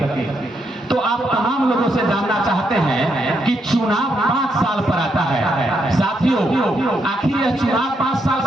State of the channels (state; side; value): normal; both; correlation 0.78